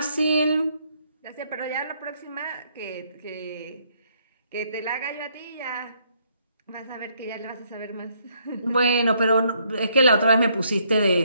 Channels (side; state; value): both; inverted; correlation -0.71